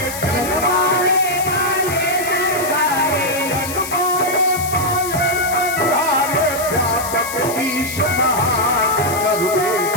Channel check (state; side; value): noise; left; hiss, 8 dB below the sound